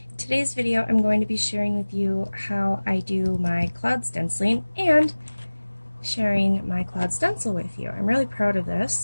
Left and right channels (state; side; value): inverted; both; correlation -1.00